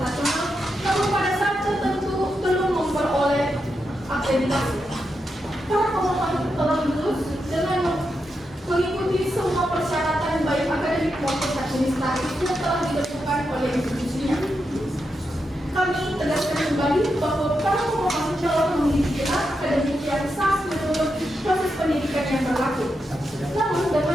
namun pada saat tertentu belum memperoleh akreditasi. Para pemohon telah lulus dengan mengikuti semua persyaratan baik akademik maupun administratif yang telah ditentukan oleh institusinya. Kami tegaskan kembali bahwa para pemohon telah memiliki gelar akademik yang sah menurut proses pendidikan yang berlaku. Namun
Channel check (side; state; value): both; normal; correlation 0.86